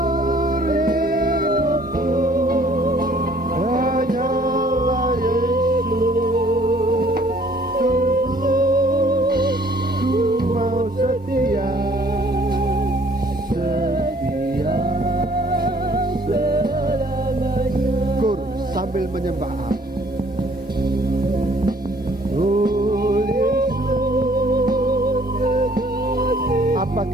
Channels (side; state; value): both; normal; correlation 0.59